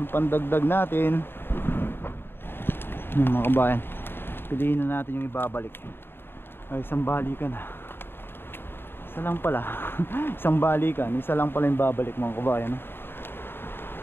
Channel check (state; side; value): late; right; 0.11 ms